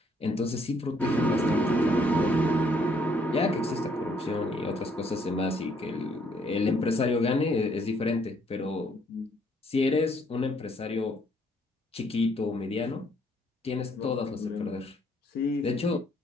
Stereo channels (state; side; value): normal; both; correlation 0.68